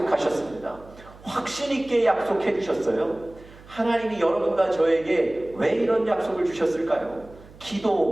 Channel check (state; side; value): noise; right; hum, 21 dB below the sound